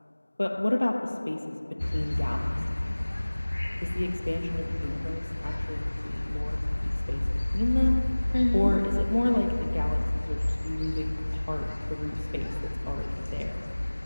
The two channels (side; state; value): both; inverted; correlation -1.00